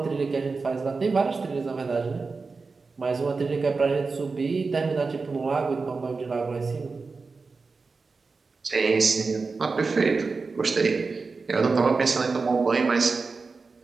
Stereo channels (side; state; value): left; quieter; 4.3 dB